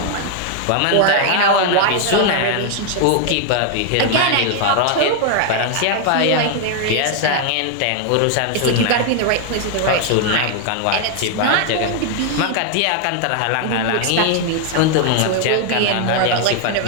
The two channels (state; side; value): different; both; correlation 0.00